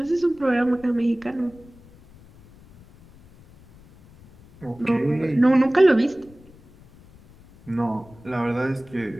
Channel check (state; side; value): noise; left; rumble, 25 dB below the sound